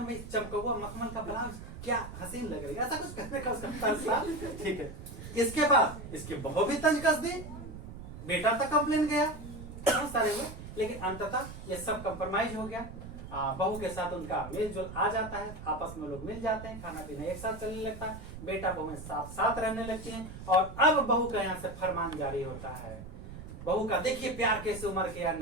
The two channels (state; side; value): noise; right; rumble, 11 dB below the sound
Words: में चमकौआ मखमल का ब्लाउज क्या हसीन लग रही है, ऐसा कुछ कहने का उसका तंज था। ठीक है, इसके बाद इसकी बहू भी तंज कस दी, बेटा तक कंप्लेन गया, बहुत सारे हुए, लेकिन अंततः ये सब कंप्रोमाइज हो गया। बहू के साथ उनका मेल जोल आ जाता है, आपस में लोग मिल जाते हैं, खाना पीना एक साथ चलने लगता है, बेटा बहू साथ साथ रहने लगती हैं। और अब बहू का यहाँ से फरमान जारी होता है। बहू का देखिए प्यार कैसे उमर गया